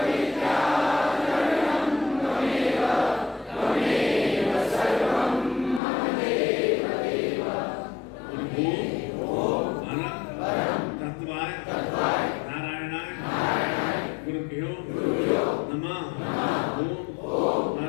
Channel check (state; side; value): drops out; right; at 5.8 s